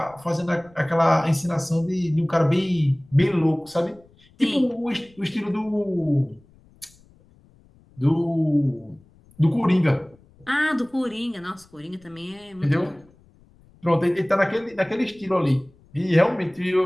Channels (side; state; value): left; noise; rumble, 29 dB below the sound